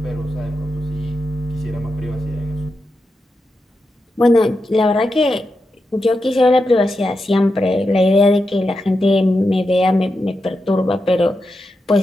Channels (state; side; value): normal; both; correlation 0.88